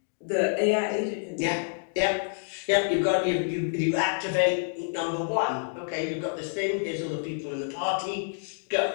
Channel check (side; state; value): right; silent; digital silence